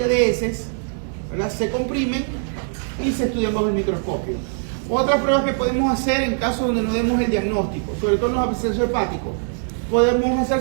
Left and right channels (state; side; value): silent; left; digital silence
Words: de heces, ¿verdad? Se comprimen y se estudian bajo el microscopio. Otras pruebas que podemos hacer en casos donde no demos el diagnóstico, sobre todo en los abscesos hepáticos, podemos hacer